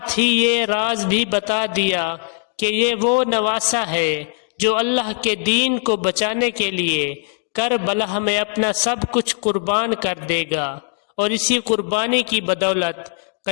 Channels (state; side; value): silent; right; 66 dB below the other